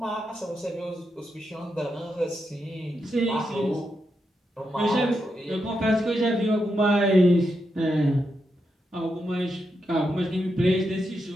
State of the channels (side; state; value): both; normal; correlation 0.84